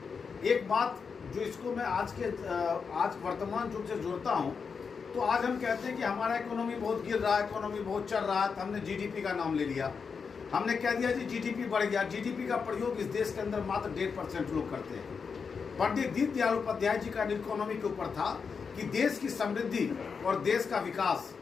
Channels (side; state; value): right; quieter; 5.7 dB